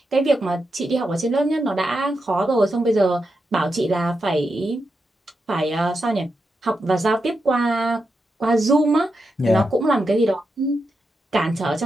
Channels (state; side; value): normal; both; correlation 0.87